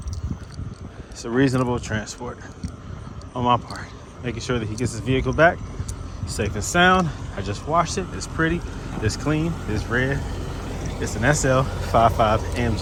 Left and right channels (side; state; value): both; identical; correlation 1.00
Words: it's a reasonable transport on my part. Making sure that he gets his vehicle back safe and sound. I just washed it. It's pretty, it's clean, it's red. It's an SL55